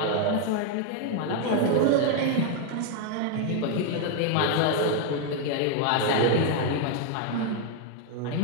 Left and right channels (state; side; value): different; both; correlation 0.00